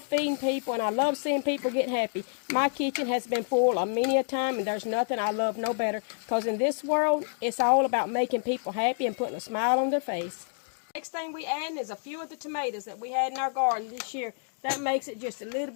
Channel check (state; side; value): silent; right; digital silence